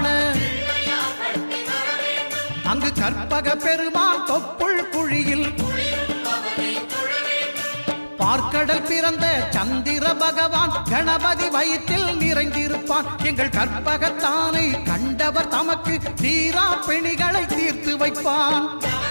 அங்கு கற்பக பெருமான் தொப்புள் குழியில் பார்க்கடல் பிறந்த சந்திர பகவான் கணபதி வயிற்றில் நிறைந்திருப்பான். எங்கள் கற்பகத்தானை கண்டவர் தமக்கு தீரா பிணிகளை தீர்த்து வைப்பான்.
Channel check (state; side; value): inverted; both; correlation -1.00